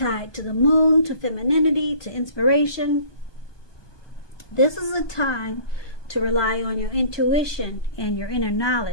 to the moon, to femininity, to inspiration. This is a time to rely on your intuition and your inner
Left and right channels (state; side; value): late; right; 1.2 ms